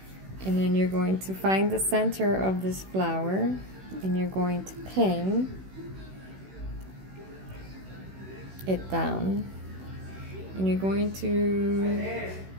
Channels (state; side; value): late; left; 16 ms